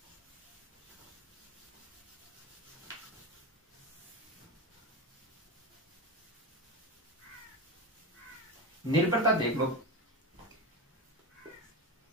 निर्भरता देख लो।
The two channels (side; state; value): both; normal; correlation 0.20